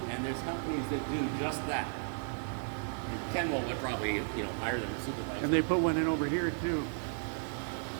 and there's companies that do just that. And Ken will probably, you know, hire them to supervise. And they put one in over here too.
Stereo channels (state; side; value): silent; left; 55 dB below the other